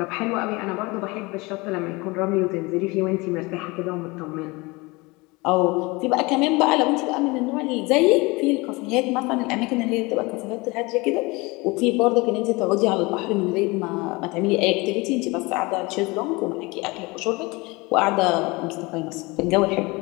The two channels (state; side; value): quieter; right; 24.5 dB